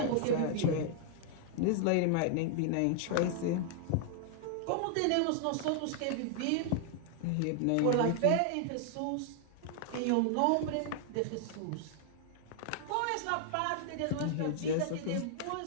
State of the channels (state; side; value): different; both; correlation 0.00